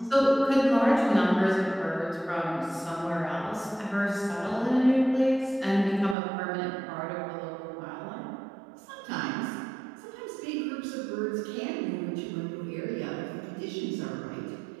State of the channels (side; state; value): left; drops out; at 6.2 s